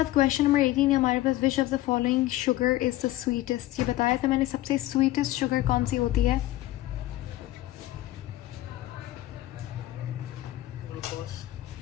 क्वेश्चन नंबर 18 है हमारे पास, which of the following sugar is the sweetest. ये बताया था मैंने, सबसे स्वीटेस्ट शुगर कौन सी होती है? ग्लूकोज।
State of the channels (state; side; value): quieter; right; 15.9 dB